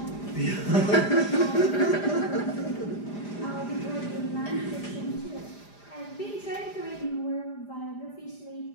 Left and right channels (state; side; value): late; right; 4.9 ms